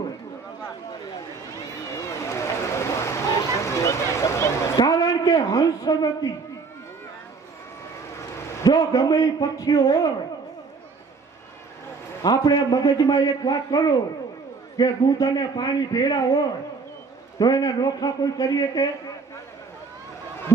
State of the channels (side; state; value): left; quieter; 4.7 dB